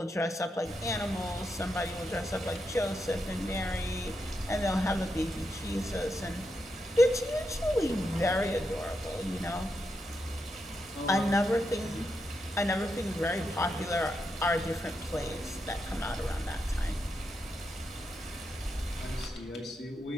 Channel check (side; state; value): both; normal; correlation 0.84